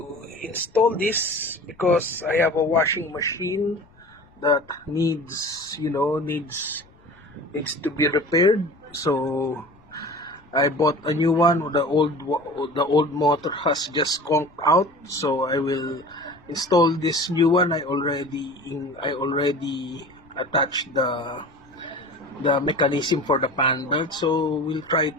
install this because I have a washing machine that needs to be repaired. So I bought a new one. The old motor has just conked out. So I will install this new one. I already attached the mechanism for the fan belt. So we'll try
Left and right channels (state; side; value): noise; left; rumble, 29 dB below the sound